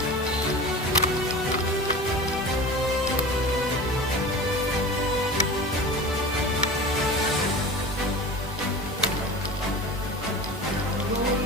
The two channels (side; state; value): both; normal; correlation 0.34